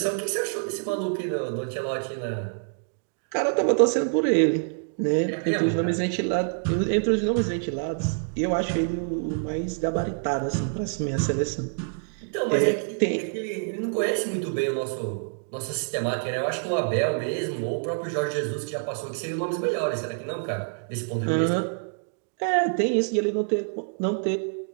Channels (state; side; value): silent; left; digital silence